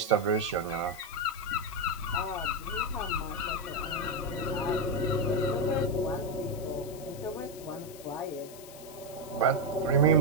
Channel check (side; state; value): left; noise; hiss, 17 dB below the sound